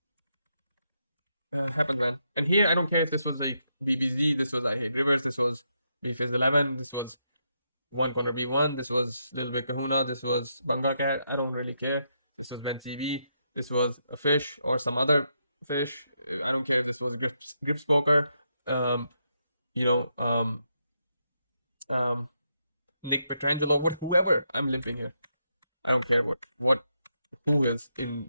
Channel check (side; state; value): both; inverted; correlation -0.80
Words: happens, man. And here I don't care if this was like BBZ, this was I hate rivers, this was BFizz 11, this was one corner B1. This was Little Big Kahuna. This was Bunga Cat. I don't really care. This was Ben TV. This was a fish or some other fish. I don't care if this was Grips Poker. Um, you know, Nick Petrangelo, whoever. I'm limping here. I don't care who is in